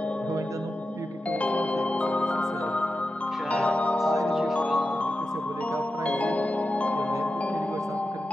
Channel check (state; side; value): normal; both; correlation 0.91